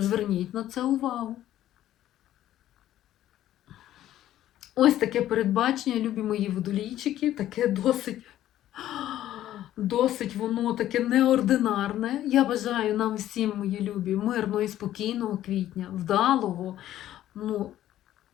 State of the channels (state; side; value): quieter; right; 12.9 dB